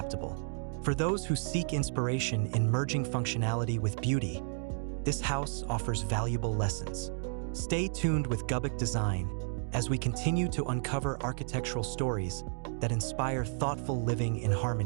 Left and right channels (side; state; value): left; silent; digital silence